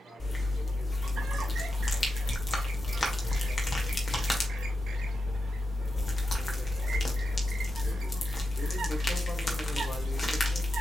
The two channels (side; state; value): both; normal; correlation 0.89